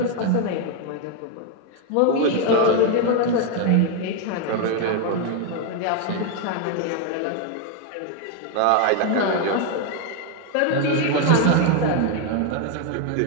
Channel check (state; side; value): different; both; correlation 0.01